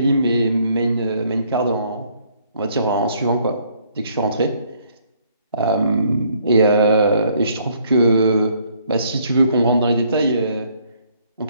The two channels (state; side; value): inverted; both; correlation -0.65